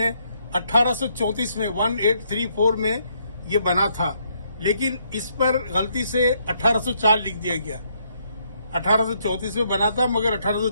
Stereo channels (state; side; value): inverted; both; correlation -0.73